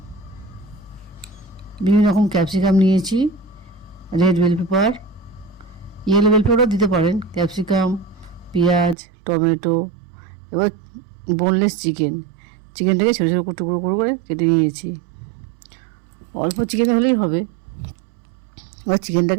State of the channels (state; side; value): drops out; left; at 9.0 s